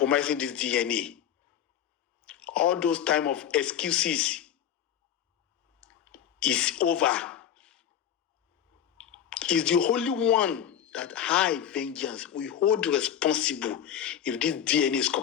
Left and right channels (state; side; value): quieter; right; 9.7 dB